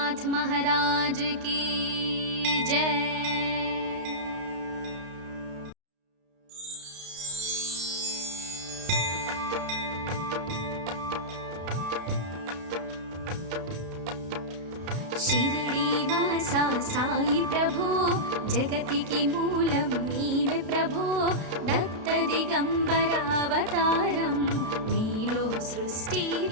महाराज की जय. షిరిడి వాస సాయి ప్రభో, జగతికి మూలం నీవే ప్రభో, దత్త దిగంబరావతారం నీలో సృష్టి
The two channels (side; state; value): left; late; 32 ms